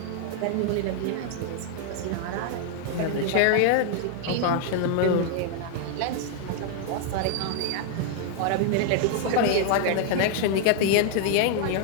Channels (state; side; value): different; both; correlation 0.00